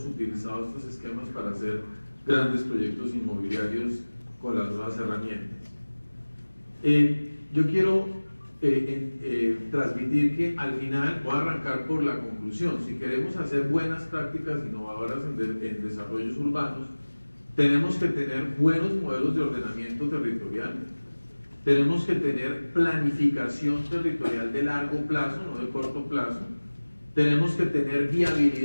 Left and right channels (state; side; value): inverted; both; correlation -1.00